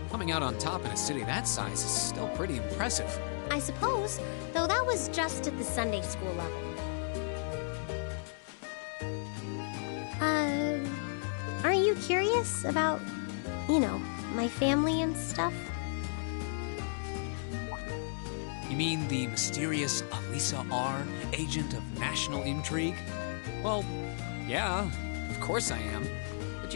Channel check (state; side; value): silent; right; digital silence